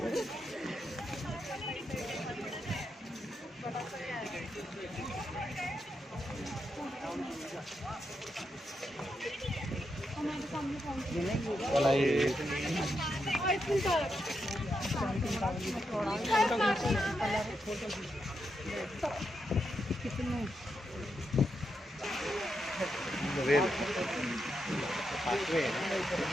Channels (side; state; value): both; normal; correlation 0.84